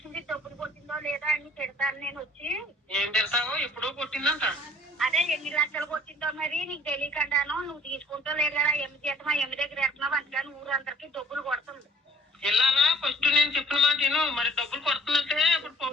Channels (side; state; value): both; normal; correlation 0.54